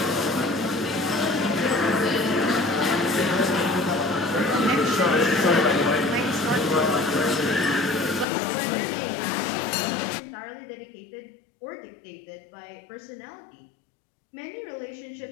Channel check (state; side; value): drops out; right; at 8.2 s